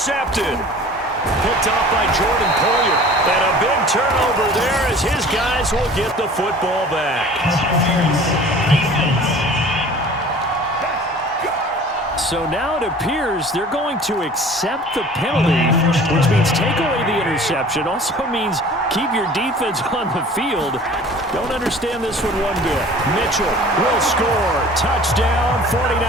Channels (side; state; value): both; normal; correlation 0.45